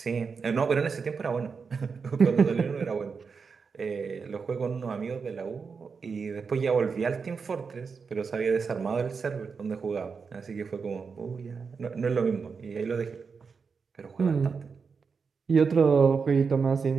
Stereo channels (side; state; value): left; quieter; 5.4 dB